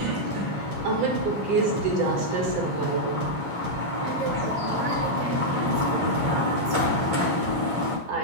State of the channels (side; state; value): left; late; 9.9 ms